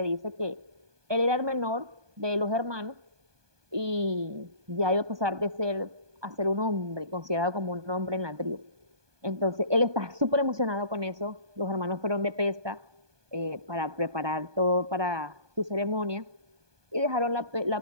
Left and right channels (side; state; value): left; late; 1.2 ms